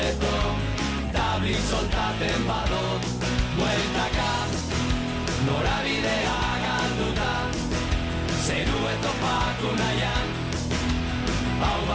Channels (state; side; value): identical; both; correlation 1.00